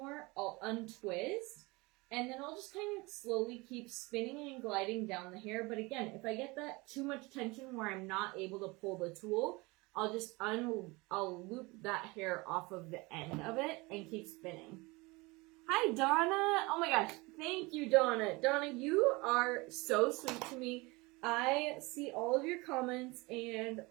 I'll untwist. And then I'll just kind of slowly keep spinning and gliding down the hair. But again, if I get that too much tension where I'm not able to pull the tool, I'll just I'll loop that hair off of the end of it and keep spinning. Hi, Donna. Oh my gosh. Thank you, Donna. Donna, you are so sweet to me. I see all of your comments and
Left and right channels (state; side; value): quieter; left; 24.4 dB